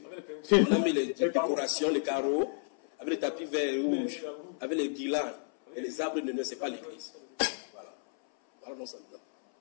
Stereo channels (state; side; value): silent; right; 57 dB below the other